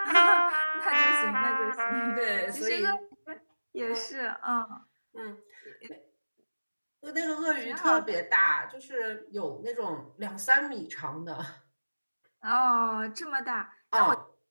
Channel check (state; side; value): inverted; both; correlation -1.00